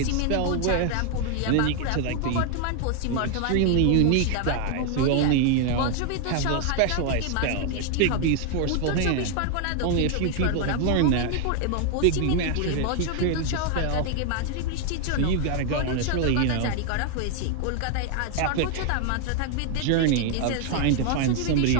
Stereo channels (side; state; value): both; different; correlation 0.00